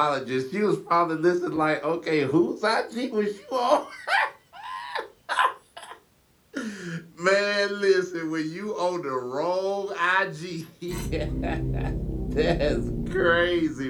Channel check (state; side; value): identical; both; correlation 1.00